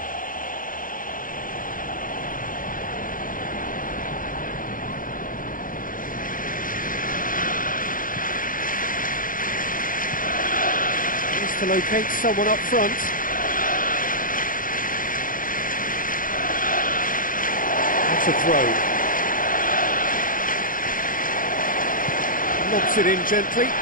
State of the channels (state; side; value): late; right; 0.40 ms